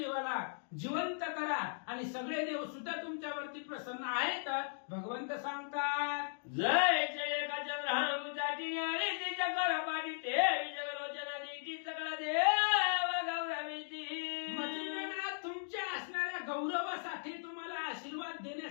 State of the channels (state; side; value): silent; right; digital silence